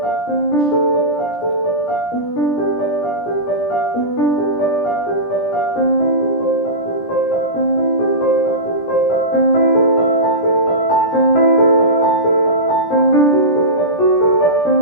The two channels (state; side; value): late; right; 17 ms